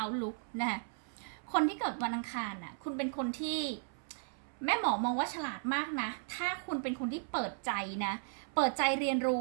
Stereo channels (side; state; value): left; silent; 54 dB below the other